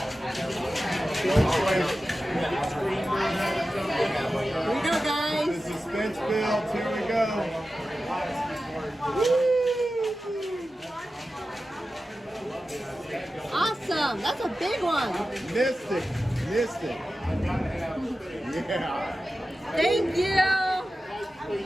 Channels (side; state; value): both; normal; correlation 0.93